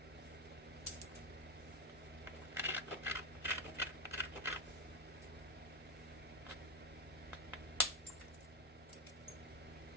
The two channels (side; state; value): both; normal; correlation 0.09